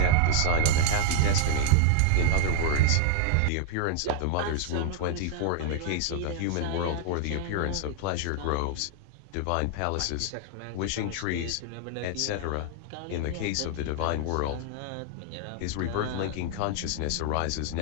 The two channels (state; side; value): different; both; correlation 0.00